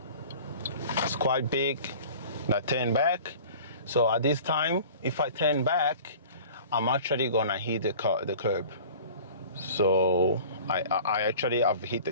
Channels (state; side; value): inverted; both; correlation -0.43